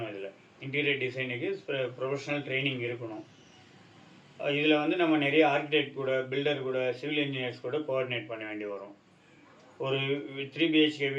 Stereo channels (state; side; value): identical; both; correlation 1.00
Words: இதில் இன்டீரியர் டிசைனுக்கு ப்ரொஃபஷனல் ட்ரைனிங் இருக்கணும். இதில் வந்து நம்ம நிறைய ஆர்கிடெக்ட் கூட, பில்டர் கூட, சிவில் இன்ஜினியர்ஸ் கூட கோஆர்டினேட் பண்ண வேண்டி வரும். ஒரு 3 பிஹெச்கே